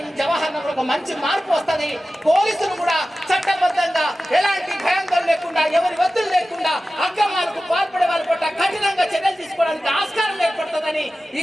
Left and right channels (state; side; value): normal; both; correlation 0.95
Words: ఈ జవహర్ నగర్ ఒక మంచి మార్పు వస్తుంది. పోలీసులు కూడా చట్టబద్ధంగా ఎలాంటి భయాందోళన లేకుండా, ఎవరి ఒత్తిడి లేకుండా అక్రమాలకు పాల్పడే వాళ్ళ పట్ల కఠినంగా చర్యలు తీసుకోవడానికి ఆస్కారం ఏర్పడుతుందని ఈ